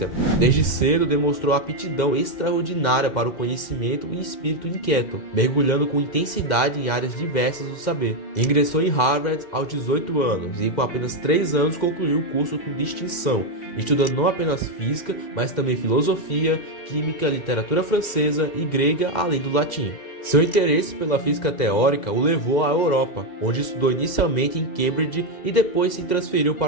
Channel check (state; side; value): late; right; 2.1 ms